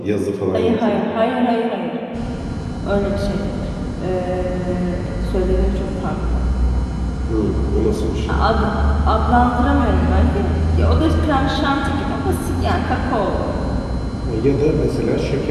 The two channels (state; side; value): identical; both; correlation 1.00